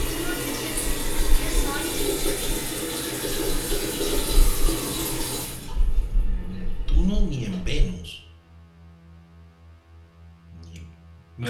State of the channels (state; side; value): identical; both; correlation 1.00